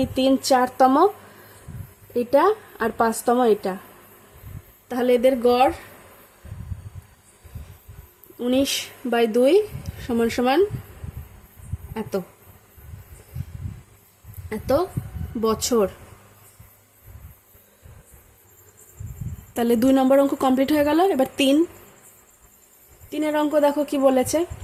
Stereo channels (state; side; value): identical; both; correlation 1.00